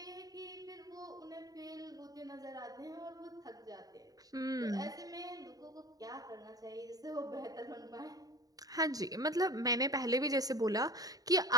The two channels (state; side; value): late; left; 0.18 ms